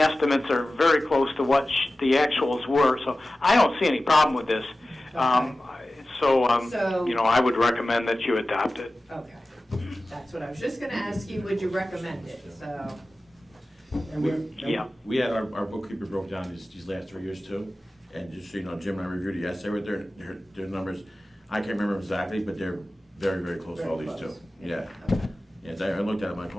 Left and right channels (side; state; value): both; normal; correlation 0.96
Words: are very close to what the actuals were, so I don't see any problem with this. So, I would recommend that you adopt it. Okay. That's what I was just gonna ask you, would you recommend it, so. Yeah. We had our bookkeeper broke down these last 3 years too, and just so you know, Jim and I reviewed it yesterday with their numbers. I can't remember exactly, but they're very, very close to all these two. Yeah. Okay. Yeah, I looked at it, I'm like,